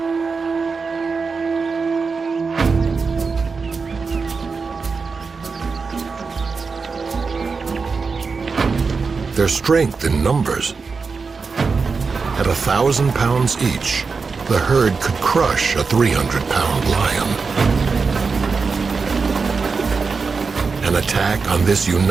Their strength in numbers. At 1,000 pounds each, the herd could crush a 300-pound lion. An attack on this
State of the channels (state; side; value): quieter; left; 4.8 dB